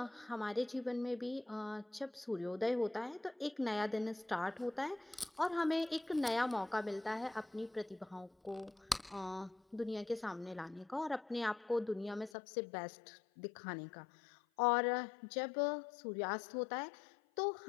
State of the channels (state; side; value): drops out; right; at 12.3 s